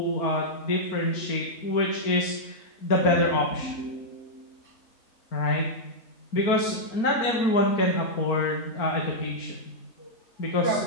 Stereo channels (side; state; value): right; late; 4.4 ms